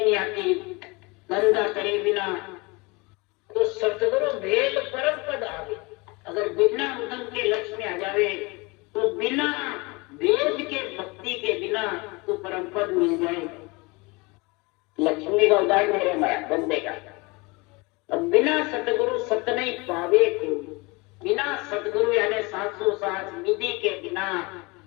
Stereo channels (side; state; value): right; quieter; 26.1 dB